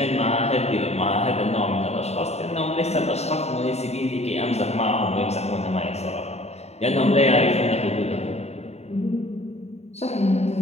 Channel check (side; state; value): right; late; 0.31 ms